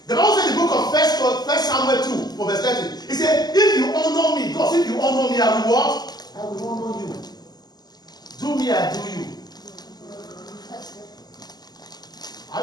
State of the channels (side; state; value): right; late; 0.20 ms